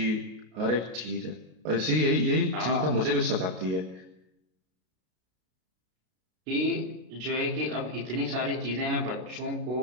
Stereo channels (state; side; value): late; left; 33 ms